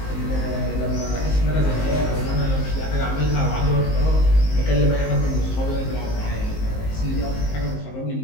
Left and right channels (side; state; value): right; late; 19 ms